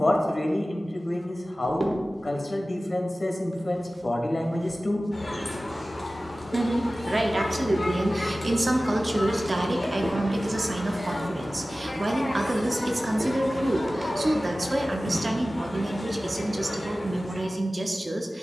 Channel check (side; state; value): both; normal; correlation 0.96